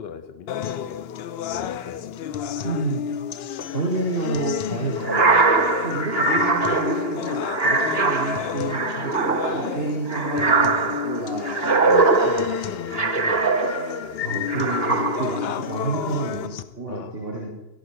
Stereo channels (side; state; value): right; late; 2.9 ms